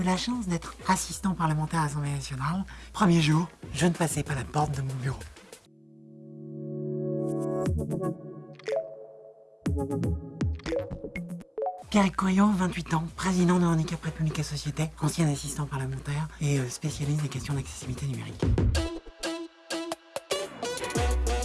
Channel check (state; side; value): identical; both; correlation 1.00